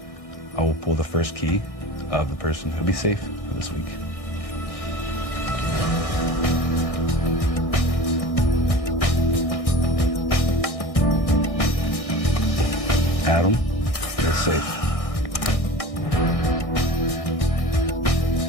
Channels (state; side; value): late; right; 1.6 ms